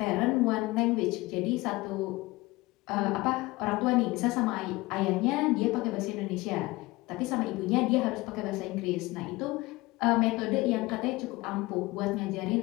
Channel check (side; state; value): right; quieter; 21.1 dB